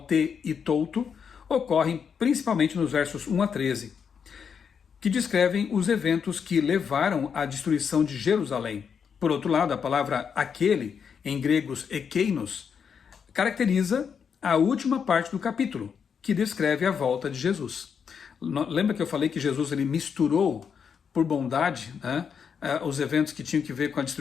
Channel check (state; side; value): quieter; right; 6.9 dB